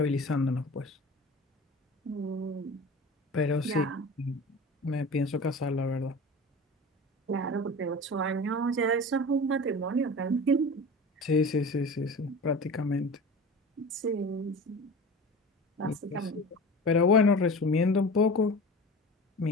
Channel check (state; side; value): normal; both; correlation 0.35